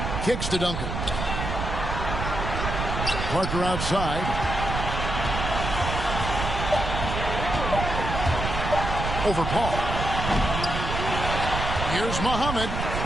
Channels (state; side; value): noise; right; rumble, 3 dB below the sound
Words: Kicks to Duncan. Parker outside. Over Paul. Here's Muhammad.